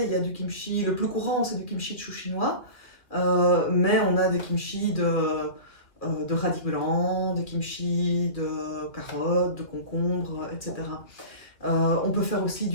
il y a du kimchi, le plus courant, c'est du kimchi de chou chinois. Mais on a des kimchi de radis blancs, des kimchi de carottes, de concombres, etc. On peut faire aussi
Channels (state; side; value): late; right; 2.3 ms